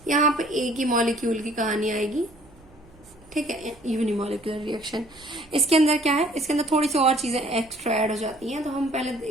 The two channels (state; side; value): noise; right; hum, 27 dB below the sound